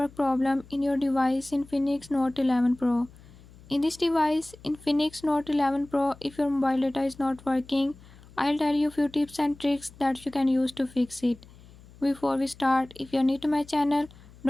problem in your device Infinix Note 11 Pro. In this device Infinix Note 11 Pro, if your mobile data is not working, I'll tell you a few tips and tricks that you can use to fix it. Before we start, if you're new to my channel,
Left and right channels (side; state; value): left; noise; hum, 22 dB below the sound